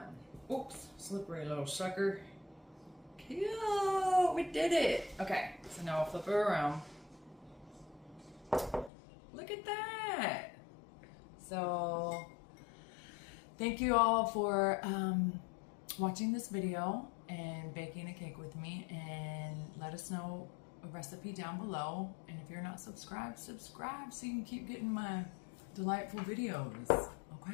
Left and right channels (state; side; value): drops out; right; at 8.9 s